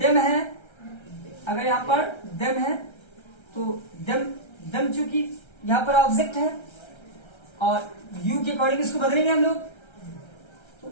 है, अगर यहाँ पर दम है तो दम, दम चूंकि यहाँ पर ऑब्जेक्ट है और यू के अकॉर्डिंग इसको बदलेंगे हम लोग,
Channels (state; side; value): late; right; 1.3 ms